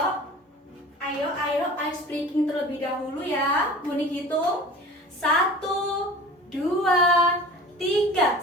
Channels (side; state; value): both; normal; correlation 0.40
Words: ice breaking terlebih dahulu ya. Bunik hitung 1, 2, 3.